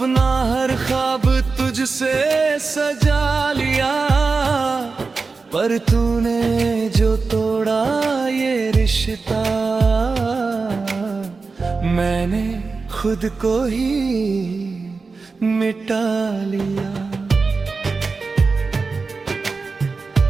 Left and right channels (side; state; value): left; quieter; 4.3 dB